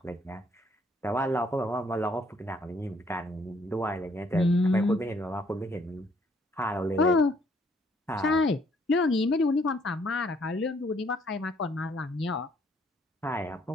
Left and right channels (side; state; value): both; normal; correlation 0.66